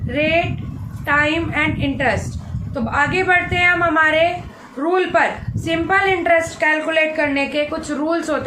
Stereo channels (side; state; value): both; identical; correlation 1.00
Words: rate, time and interest. तो आगे बढ़ते हैं हम हमारे रूल पर। सिंपल इंटरेस्ट कैलकुलेट करने के कुछ रूल्स